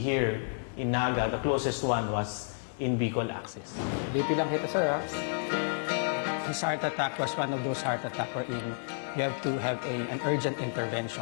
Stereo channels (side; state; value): right; silent; 57 dB below the other